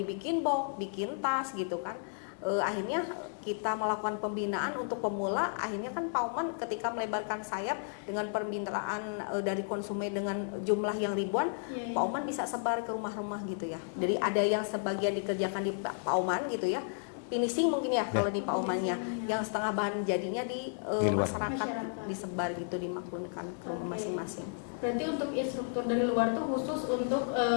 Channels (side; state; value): right; silent; digital silence